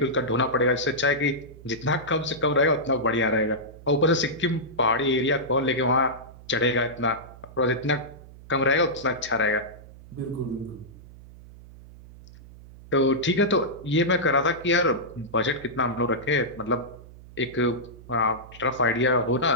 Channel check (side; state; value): right; noise; hum, 19 dB below the sound